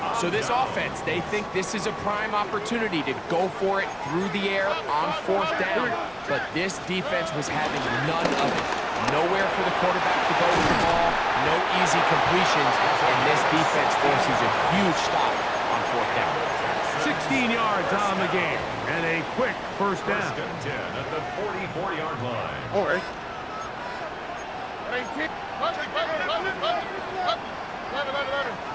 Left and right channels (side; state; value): both; identical; correlation 1.00